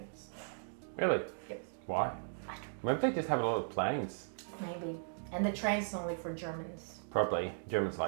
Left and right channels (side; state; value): left; silent; digital silence